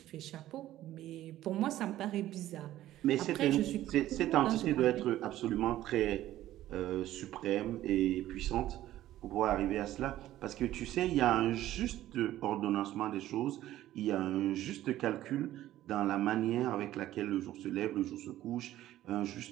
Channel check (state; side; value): quieter; left; 14.0 dB